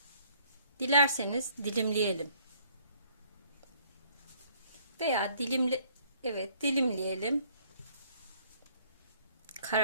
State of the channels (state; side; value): inverted; both; correlation -0.61